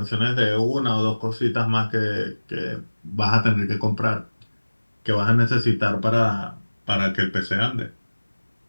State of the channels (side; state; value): both; inverted; correlation -1.00